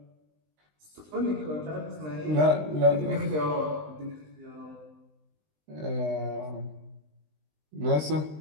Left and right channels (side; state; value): left; late; 20 ms